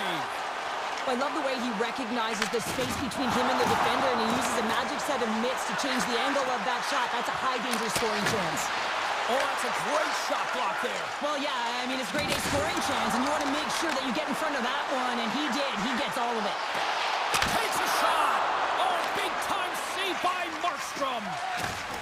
I love the way he recognizes the space between him and the defender, and he uses a magic set of mitts to change the angle of that shot. That's a high-danger scoring chance. Oh, that's a great shot block there. Well, yeah, I mean, it's grade A scoring chance, and you want to make sure that you get in front of that one, and he did. He gets all of it. Takes a shot. Oh, big-time save by Markstrom.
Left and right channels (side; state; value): both; identical; correlation 1.00